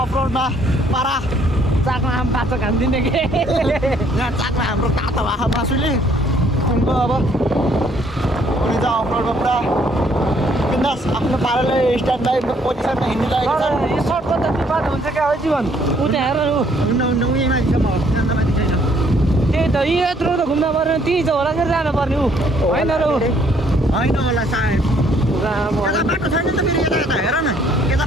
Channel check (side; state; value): both; normal; correlation 0.64